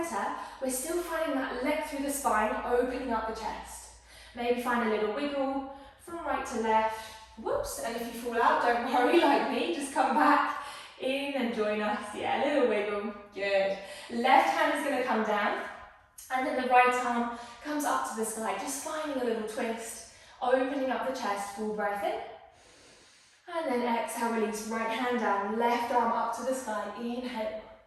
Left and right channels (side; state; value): both; identical; correlation 1.00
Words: We're still finding that leg through the spine, opening up the chest. Maybe find a little wiggle from right to left. Whoops, and if you fall out, don't worry like me, just come back in and join us. Yeah, a little wiggle, good. Left hand is gonna come down, and then the right arm comes up to the sky, just finding a little twist, opening up the chest, full breath in. And then exhale, release, right hand down, left arm up to the sky, inhale.